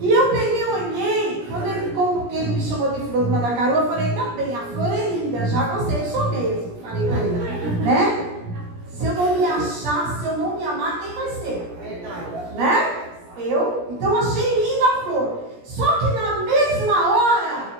eu peguei, olhei, quando ele me chamou de flor de Mandacaru, eu falei, tá bem, a flor é linda, já gostei, eu sou mesmo. Falei pra ele, né? Se eu não me achar, se eu não me amar, quem vai ser? Né? Eu? Então achei linda a flor. Só que na mesma hora,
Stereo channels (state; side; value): late; left; 17 ms